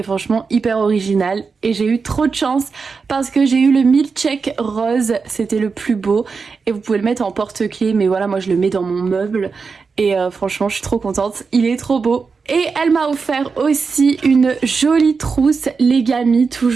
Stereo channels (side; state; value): left; quieter; 5.0 dB